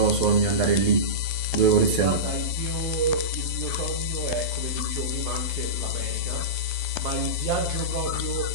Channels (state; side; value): late; left; 12 ms